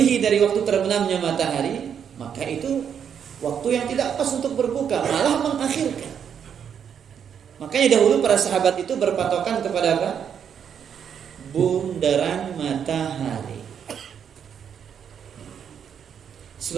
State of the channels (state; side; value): quieter; left; 8.0 dB